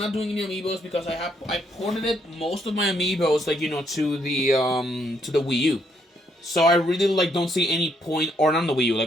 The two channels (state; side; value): normal; both; correlation 0.73